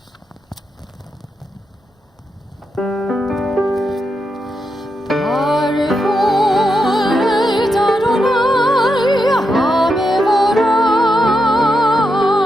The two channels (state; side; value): normal; both; correlation 0.85